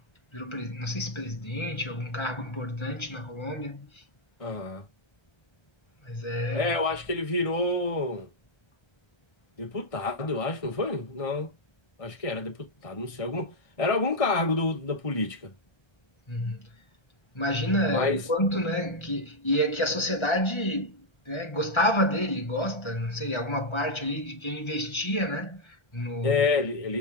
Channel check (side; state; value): right; late; 1.6 ms